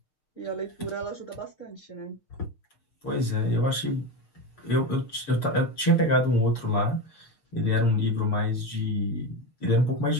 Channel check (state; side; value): late; right; 6.5 ms